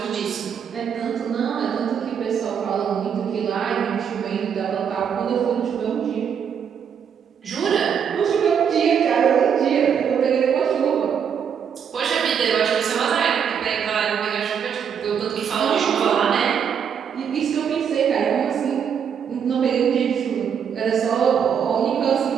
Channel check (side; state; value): left; quieter; 7.6 dB